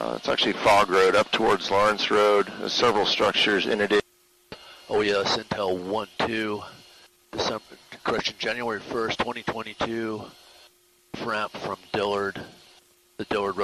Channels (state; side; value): identical; both; correlation 1.00